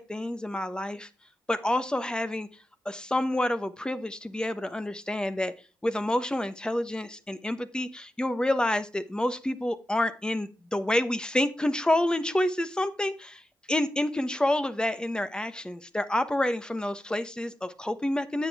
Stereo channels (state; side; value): normal; both; correlation 0.91